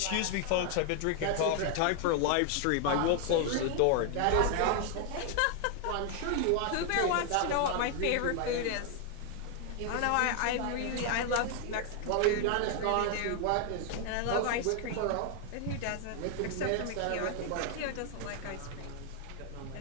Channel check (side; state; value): both; different; correlation 0.00